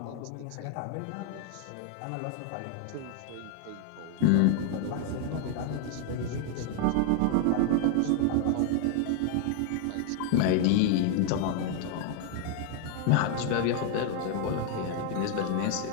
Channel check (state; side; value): different; both; correlation 0.00